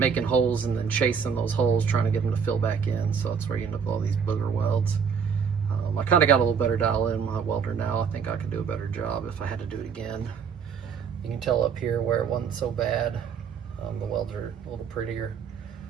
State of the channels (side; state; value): left; quieter; 6.6 dB